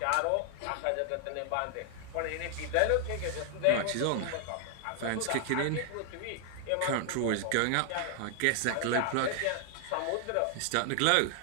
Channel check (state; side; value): different; both; correlation 0.00